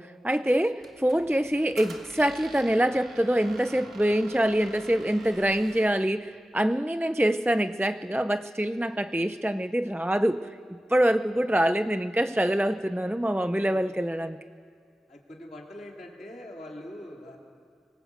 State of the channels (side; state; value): both; normal; correlation 0.94